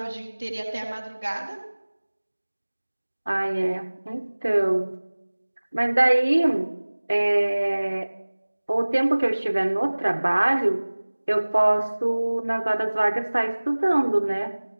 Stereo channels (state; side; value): inverted; both; correlation -1.00